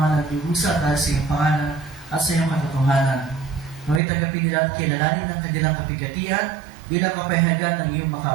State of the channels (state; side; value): drops out; left; at 4.0 s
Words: nagdurusa dahil sa iyong pangalan at sa iyong katotohanan. Nawa'y tanggapin nila at kilalanin ng kanilang kapigatian bilang kapayagan ng iyong